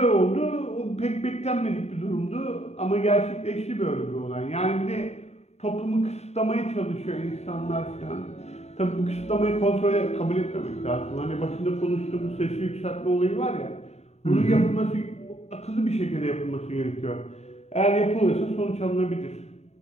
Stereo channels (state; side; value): late; right; 0.32 ms